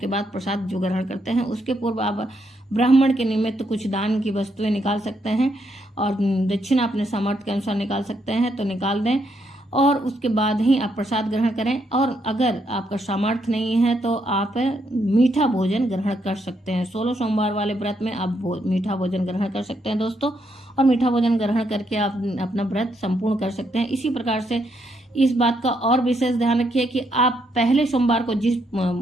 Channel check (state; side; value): normal; both; correlation 0.76